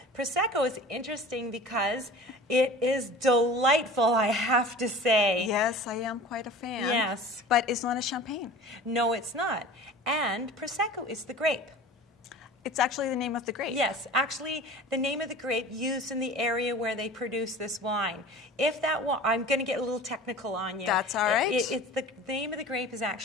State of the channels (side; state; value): both; normal; correlation 0.40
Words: Prosecco is interesting because it is delightful, I have to say. Yes, I am quite a fan. Yes. But it's not a champagne. No, it's not. And Prosecco is the grape. It's actually the name of the grape. Yes, actually the name of the grape used in the area where they produce this wine. If that I'm going to get a little technical on you. That's all right. It's the name of the grape is